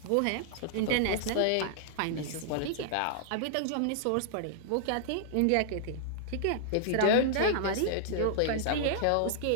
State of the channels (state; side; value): different; both; correlation -0.01